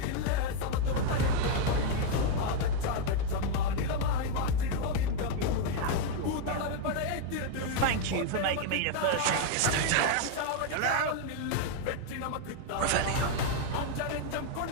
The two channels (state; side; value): different; both; correlation 0.01